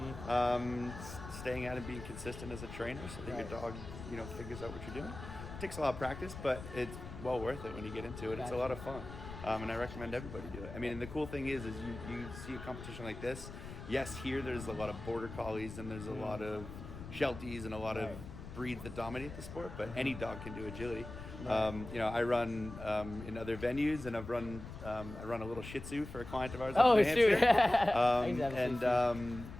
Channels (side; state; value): left; noise; rumble, 11 dB below the sound